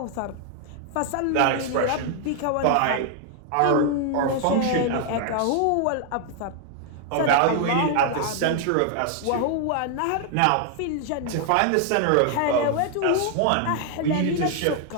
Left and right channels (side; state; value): both; different; correlation 0.00